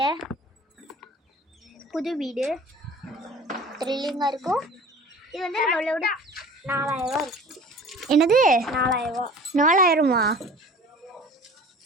புது வீடு. த்ரில்லிங்காக இருக்கும். இது வந்து நம்மளோட 4000 இருக்கு. என்னது 4000?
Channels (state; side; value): normal; both; correlation 0.43